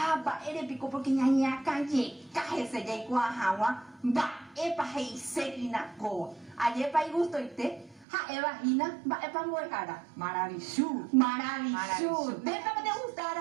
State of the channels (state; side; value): drops out; left; at 8.1 s